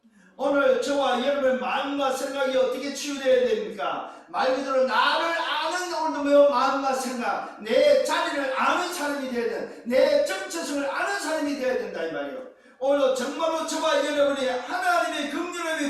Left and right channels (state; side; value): identical; both; correlation 1.00